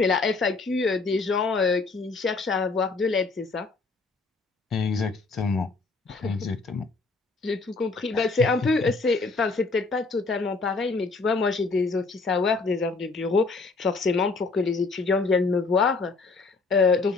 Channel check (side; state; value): right; quieter; 4.0 dB